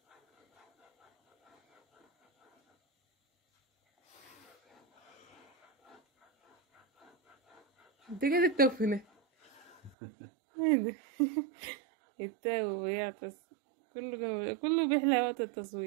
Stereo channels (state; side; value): drops out; left; at 10.0 s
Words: انت كده التوفنة. ايه ده؟ يتاوب ويعطس. كله بيحلى وقت